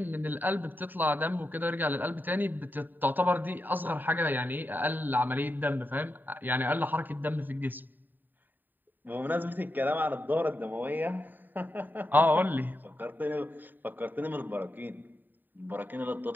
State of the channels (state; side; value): late; left; 0.090 ms